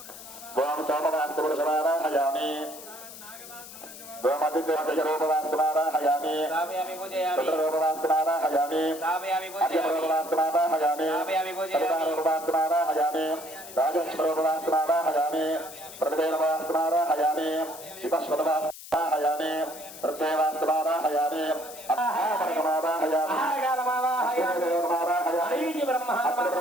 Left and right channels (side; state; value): left; noise; hiss, 15 dB below the sound